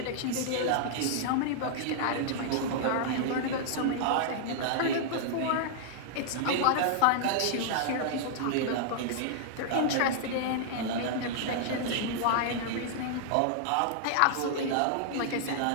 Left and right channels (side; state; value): both; different; correlation -0.01